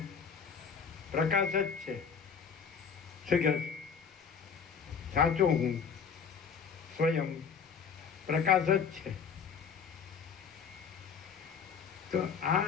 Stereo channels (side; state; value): right; quieter; 6.4 dB